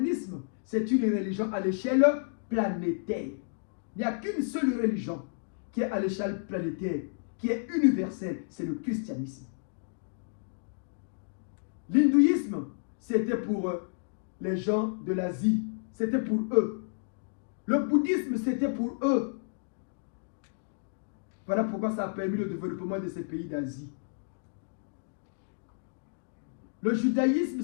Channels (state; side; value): silent; right; digital silence